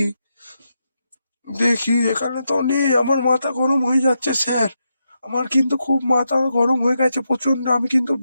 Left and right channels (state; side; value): inverted; both; correlation -0.84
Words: দেখি এখানে তো নেই, আমার মাথা গরম হয়ে যাচ্ছে স্যার, আমার কিন্তু খুব মাথা গরম হয়ে গেছে প্রচন্ড, আমি কিন্তু